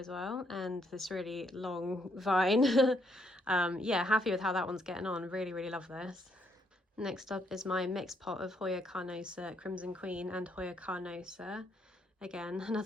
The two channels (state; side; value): normal; both; correlation 0.73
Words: well. And this really long vine. Yeah, happy with how that one's getting on. Really, really love this. Next up is my mixed pot of Hoya carnosa Crimson Queen and Hoya carnosa. Again,